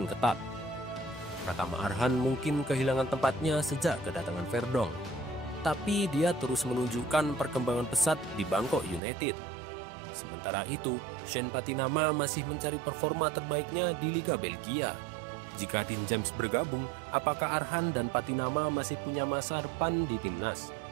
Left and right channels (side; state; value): left; drops out; at 9.0 s